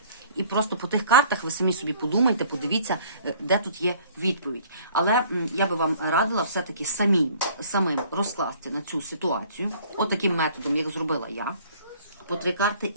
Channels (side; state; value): both; inverted; correlation -0.54